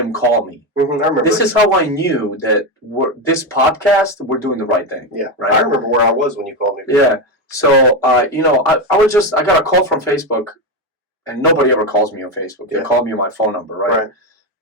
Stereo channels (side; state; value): both; normal; correlation 0.12